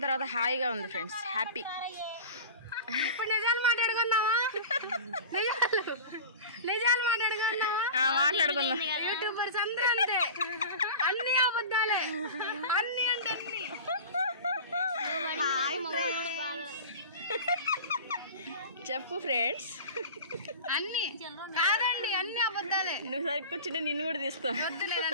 తర్వాత హాయిగా ఉంది ఫ్రెండ్స్. హ్యాపీ. ఇప్పుడు నిజాలు మాట్లాడుకుందామా? నిజాలు మాట్లాడుకుందామా? మాట్లాడుకుందాం. యూట్యూబర్స్ అందరూ అంతే, అన్ని అబద్ధాలే, అన్ని అంటే చెప్పు ఫ్రెండ్స్. అన్ని కాదండి, అన్ని అబద్ధాలే. నువ్వు సరికి కూర్చుంటే నిన్ను కూడా తీస్తా. వద్దులేదు,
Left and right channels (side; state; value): both; inverted; correlation -0.33